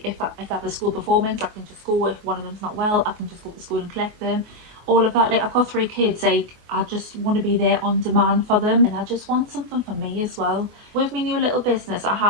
if I have a school performance, I can just go. If one of them's not well, I can just go to school and collect them. All of that. Like, I've got 3 kids, like, I just want to be there on demand for them, and I just want something for me as well. With my new little business, I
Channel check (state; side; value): late; left; 24 ms